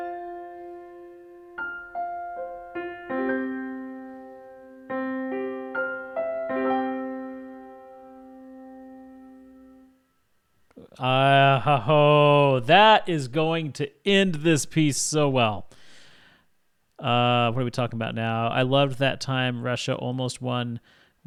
That is going to end this piece so well. What are we talking about now? I loved that time Russia almost won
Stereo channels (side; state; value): both; identical; correlation 1.00